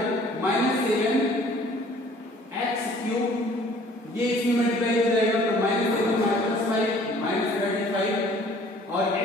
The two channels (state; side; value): normal; both; correlation 0.54